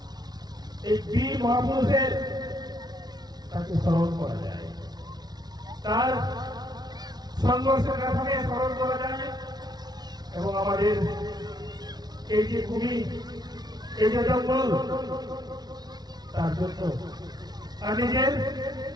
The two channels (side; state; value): left; late; 0.19 ms